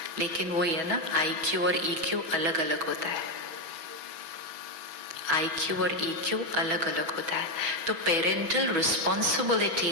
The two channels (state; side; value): late; left; 6.1 ms